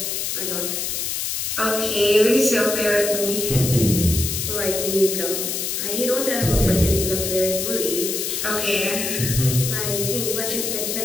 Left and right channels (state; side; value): noise; left; hiss, 2 dB below the sound